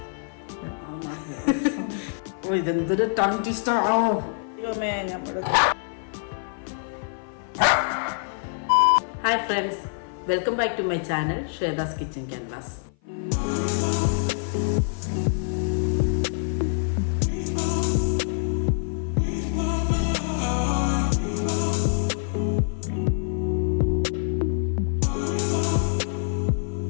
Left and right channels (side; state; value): right; silent; 56 dB below the other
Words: ഇതെന്തൊരു ടങ് ട്വിസ്റ്റർ ആണോ ദൈവമേ. Hi friends, welcome back to my channel Shweta's kitchen canvas.